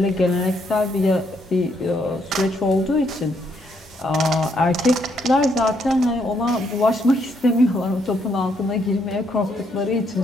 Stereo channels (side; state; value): both; normal; correlation 0.73